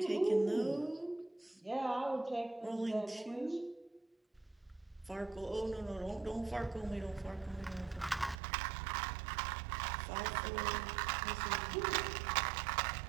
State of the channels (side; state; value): left; drops out; at 8.4 s